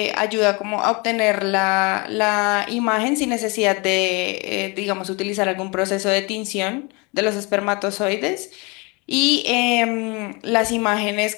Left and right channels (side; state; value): right; quieter; 28.8 dB